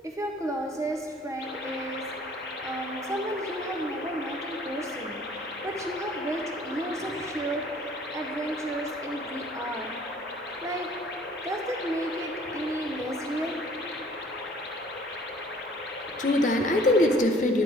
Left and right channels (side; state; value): both; normal; correlation 0.54